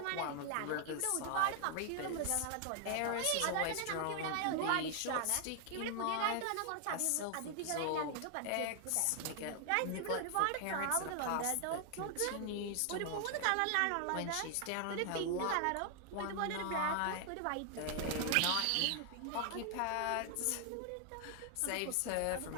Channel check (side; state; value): both; different; correlation 0.00